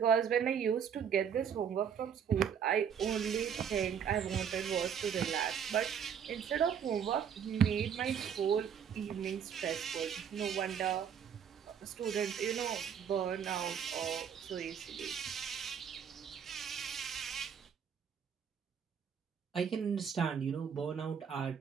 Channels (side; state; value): left; quieter; 7.8 dB